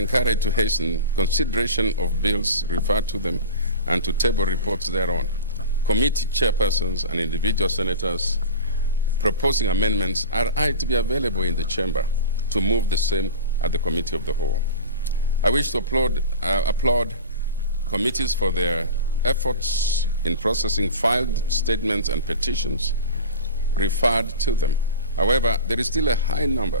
to hasten consideration of bills referred to them and to table reports thereon. Committee chairpersons and individual senators proposing amendments are to be available in the chamber to move the same at the Committee of the Whole. I wish to applaud committees for their efforts in processing filed statements and petitions referred to them. However, there is still a high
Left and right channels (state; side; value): inverted; both; correlation -0.31